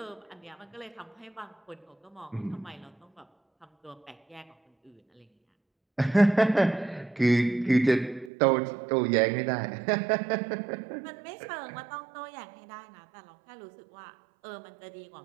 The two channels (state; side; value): drops out; left; at 8.3 s